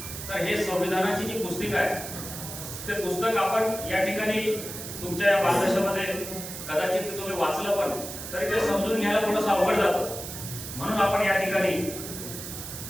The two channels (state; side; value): noise; right; hiss, 9 dB below the sound